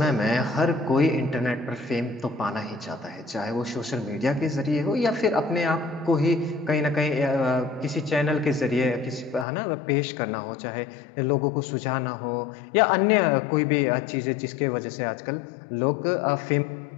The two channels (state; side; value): drops out; right; at 9.5 s